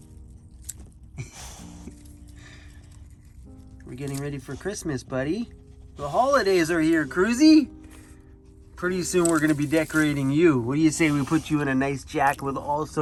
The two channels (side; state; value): both; identical; correlation 1.00